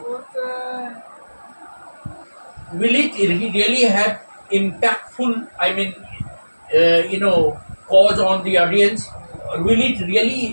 will it really have impactful, cause on the audience? Will it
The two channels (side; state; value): both; inverted; correlation -1.00